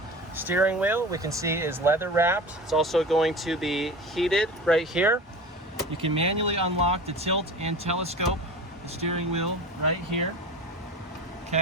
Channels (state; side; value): normal; both; correlation 0.33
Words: Steering wheel, we can see, is leather wrapped. It's also going to be heated right here. You can manually unlock the tilt and telescope the steering wheel right here.